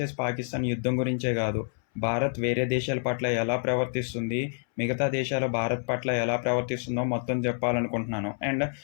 పాకిస్తాన్ యుద్ధం గురించే కాదు, భారత్ వేరే దేశాల పట్ల ఎలా ప్రవర్తిస్తుంది, మిగతా దేశాలు భారత్ పట్ల ఎలా ప్రవర్తిస్తుందో మొత్తం చెప్పాలనుకుంటున్నాను. అండ్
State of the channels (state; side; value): silent; right; 59 dB below the other